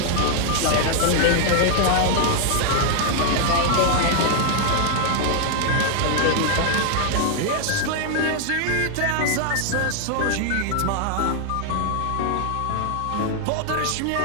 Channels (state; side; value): different; both; correlation 0.00